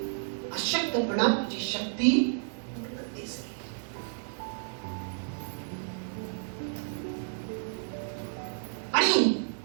अशक्तपणा तुझी शक्ती आणि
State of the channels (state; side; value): silent; left; 57 dB below the other